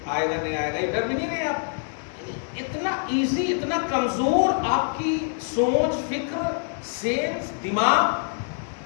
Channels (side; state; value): right; silent; 62 dB below the other